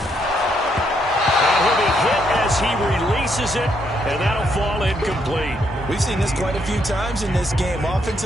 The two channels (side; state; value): both; normal; correlation 0.74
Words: he'll be hit as he releases it, and that'll fall incomplete. We've seen this quite a few times in this game.